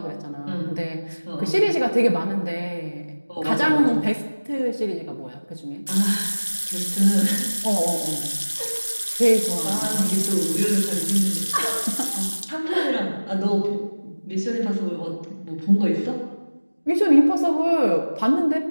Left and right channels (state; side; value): inverted; both; correlation -1.00